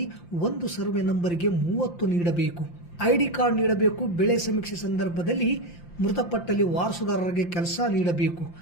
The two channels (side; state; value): right; late; 5.8 ms